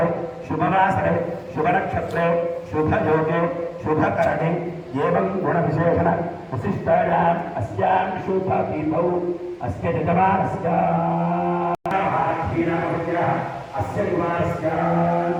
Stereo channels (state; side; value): identical; both; correlation 1.00